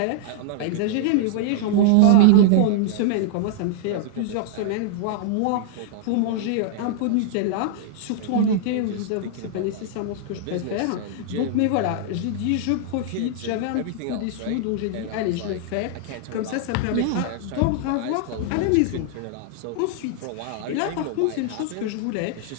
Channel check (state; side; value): different; both; correlation -0.01